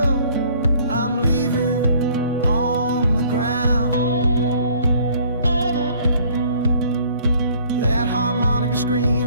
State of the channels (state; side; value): inverted; both; correlation -0.57